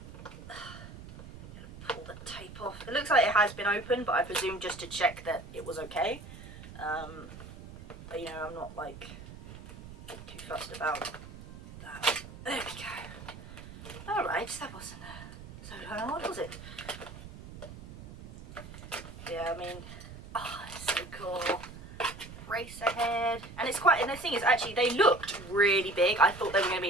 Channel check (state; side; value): noise; right; rumble, 14 dB below the sound